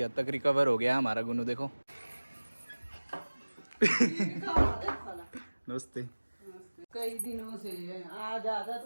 हद तक रिकवर हो गया हमारा गुन्नू। देखो नमस्ते। कई दिनों से आज आजा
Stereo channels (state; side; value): inverted; both; correlation -1.00